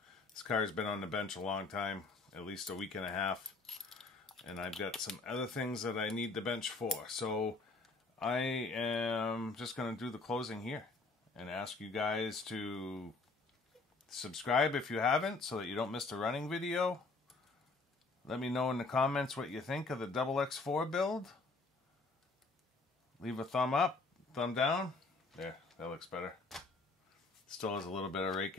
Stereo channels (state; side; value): quieter; right; 3.7 dB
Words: This car's been on the bench a long time, at least a week and a half. And I've got some other things that I need the bench for. So I am just going to do the closing here and ask you guys to subscribe if you haven't, so that you don't miss the running video. Let me know in the comments what you think of the XX4 build. Leave a thumb up, thumb down. There, that looks better. Still has a little bit of rake